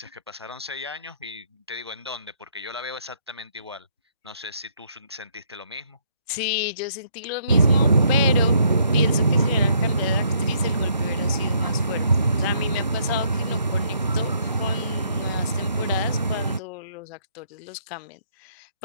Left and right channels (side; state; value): both; inverted; correlation -0.69